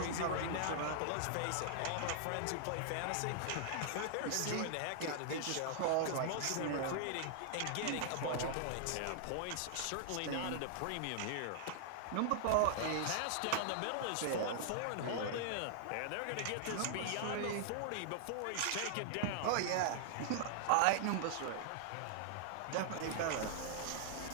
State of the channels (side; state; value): both; different; correlation -0.01